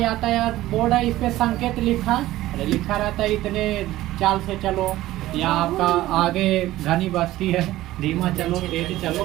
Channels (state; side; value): quieter; left; 15.8 dB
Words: यातायात बोर्ड है, इस पे संकेत लिखा रहता है इतने चाल से चलो, या आपका आगे घनी बस्ती है धीमा चलो तेज